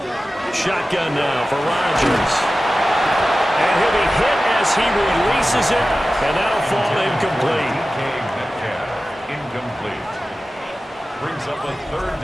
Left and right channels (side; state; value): both; normal; correlation 0.95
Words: Shotgun now for Rodgers. And he'll be hit as he releases it, and that'll fall incomplete. Incomplete. Brings up a 3rd